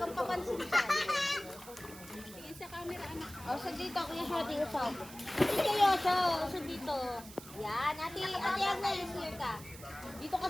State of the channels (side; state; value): right; noise; hiss, 16 dB below the sound